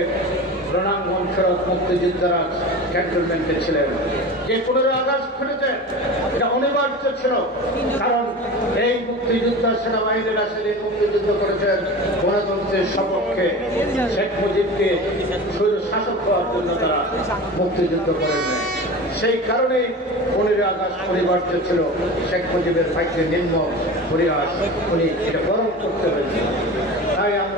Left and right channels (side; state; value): both; normal; correlation 0.32